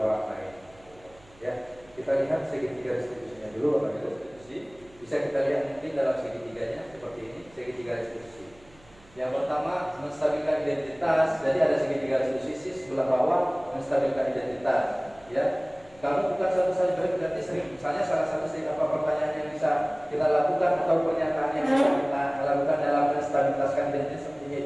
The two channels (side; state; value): right; noise; hum, 27 dB below the sound